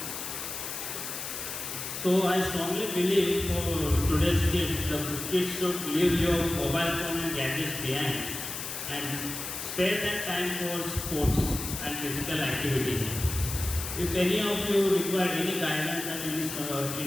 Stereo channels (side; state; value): left; noise; hiss, 6 dB below the sound